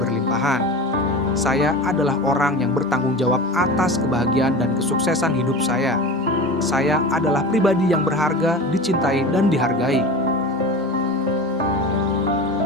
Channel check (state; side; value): normal; both; correlation 0.32